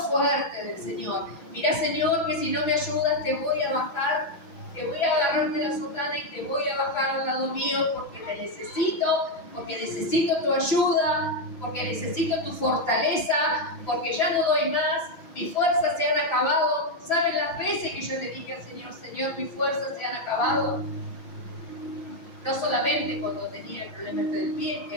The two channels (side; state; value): right; late; 6.1 ms